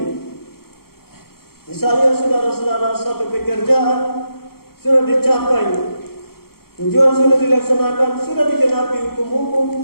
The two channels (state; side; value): late; right; 0.94 ms